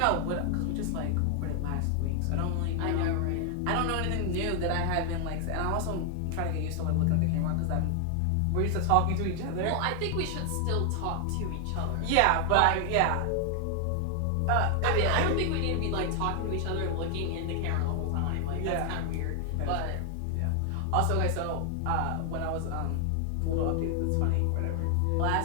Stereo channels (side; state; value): both; different; correlation 0.00